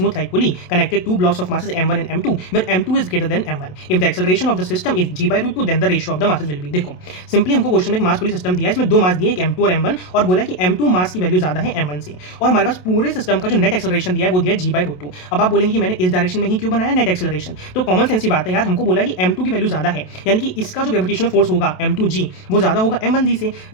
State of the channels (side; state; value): right; late; 27 ms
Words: light pulley connected to blocks of masses m1 and m2 where m2 is greater than m1 if the acceleration of the system is g/√2 then the ratio of the masses will be। देखो simply हमको question में एक मास पुली system दिया है, इसमें दो मास दिए, एक m2 और m1, और बोला है कि m2 मास की वैल्यू ज्यादा है m1 से, और हमारे पास पूरे सिस्टम का जो नेट एक्सेलरेशन दिया है वो दिया है g/√2। अब आप बोलेंगे कि मैंने इस डायरेक्शन में ही क्यों बनाया नेट एक्सेलरेशन, तो कॉमन सेंस की बात है यार, हमको बोला है कि m2 की वैल्यू ज्यादा है, यानी कि इसका जो ग्रेविटेशनल फोर्स होगा m2g वो ज्यादा होगा m1g से,